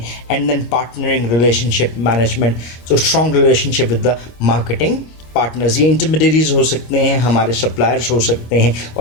And then partnering relationship management, so strong relationship with the marketing partners. ये इंटरमीडियरीज हो सकते हैं, हमारे सप्लायर्स हो सकते हैं,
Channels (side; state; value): right; late; 25 ms